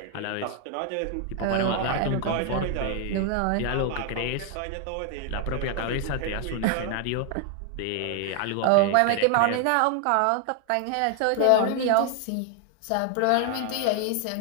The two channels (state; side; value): different; both; correlation 0.00